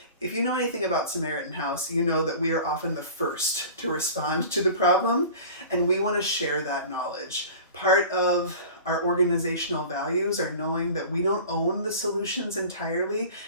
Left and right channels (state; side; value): inverted; both; correlation -0.39